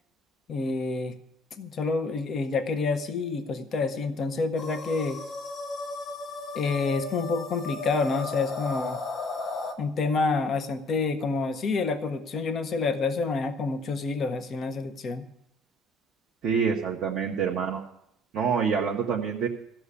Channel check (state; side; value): normal; both; correlation 0.56